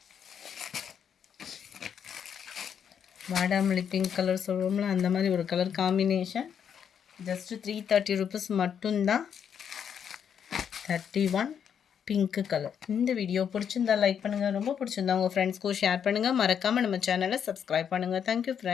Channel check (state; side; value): quieter; right; 8.0 dB